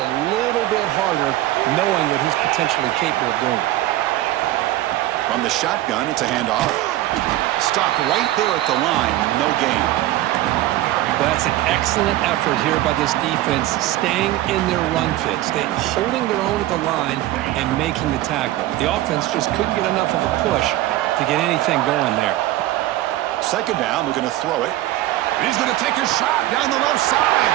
little bit harder, knowing what he's potentially capable of doing. From the shotgun, it's a handoff. Stopped right there at the line, no gain. Well, that's an excellent effort here by this defense, staying in their run fits, holding their own at the line and making the tackle. The offense just couldn't get enough of a push to get anything going there. Second down, we're going to throw it. And he's going to take a shot down the left side.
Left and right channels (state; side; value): quieter; left; 15.3 dB